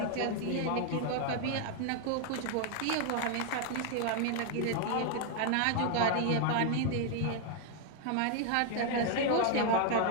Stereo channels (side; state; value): both; different; correlation 0.00